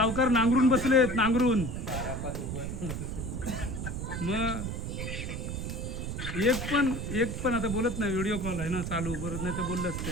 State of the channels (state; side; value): noise; right; rumble, 4 dB below the sound